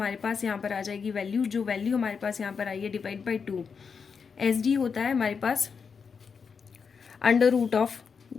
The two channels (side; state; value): right; quieter; 5.9 dB